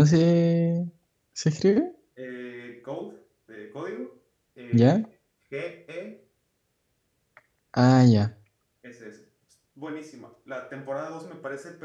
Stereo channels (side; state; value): both; identical; correlation 1.00